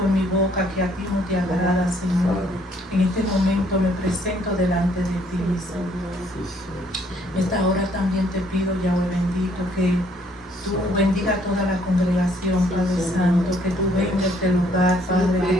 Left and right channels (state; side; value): normal; both; correlation 0.65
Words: en mi boca que a ti no te agrada, Señor, en este momento me presento delante de ti, mi Señor. En esta hora también te pido, Yahweh bendito, que tú bendiga a toda la congregación, Padre Santo, que tú vengas a este lugar, Padre, que